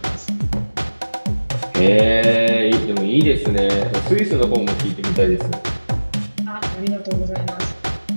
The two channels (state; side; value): inverted; both; correlation -1.00